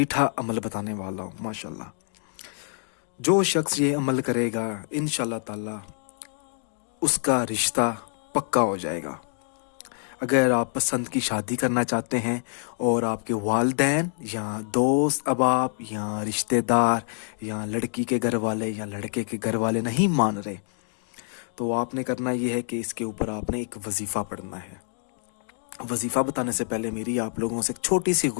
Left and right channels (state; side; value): silent; right; digital silence